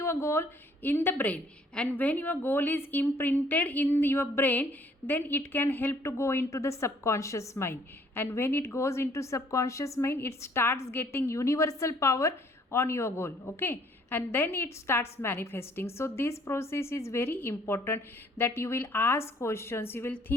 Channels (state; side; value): normal; both; correlation 0.61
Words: goal in the brain. And when your goal is imprinted in your brain, then it can help to go into the subconscious mind. And when it goes into subconscious mind, it starts getting universal power on your goal, okay? And then it starts manifesting. So this process is very important, that you will ask questions, you will